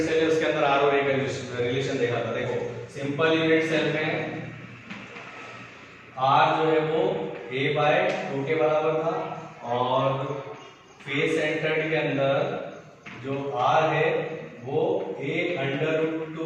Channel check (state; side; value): identical; both; correlation 1.00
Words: सेल है उसके अंदर R और A का रिलेशन देखा था। देखो सिंपल यूनिट सेल में R जो है वो A/2 के बराबर था, और फेस सेंटर्ड के अंदर जो R है वो